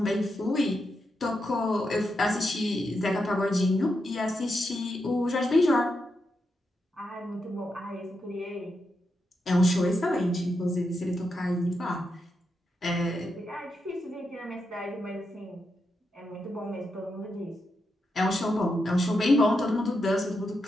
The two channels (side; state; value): both; normal; correlation 0.85